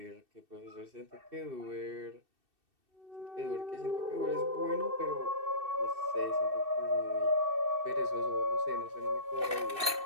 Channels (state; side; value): late; left; 2.7 ms